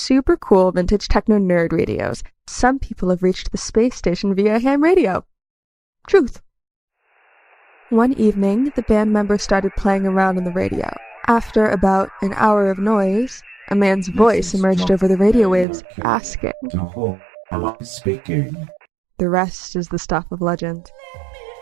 cool vintage techno nerd radios. Some people have reached the space station via ham radio. Truth. One evening, the band members started playing around on the radio. After about an hour of noise, a man's voice emerged over the radio waves, asking, Am I speaking? The rest is the stuff of legend.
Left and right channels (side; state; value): left; drops out; at 15.7 s